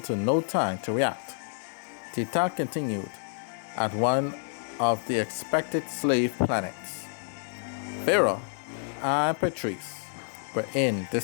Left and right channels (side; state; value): right; silent; 59 dB below the other